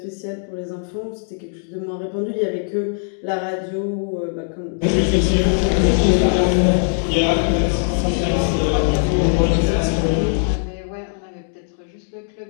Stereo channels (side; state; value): right; silent; digital silence